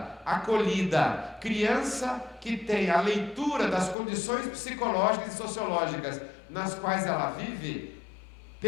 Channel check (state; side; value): drops out; right; at 4.0 s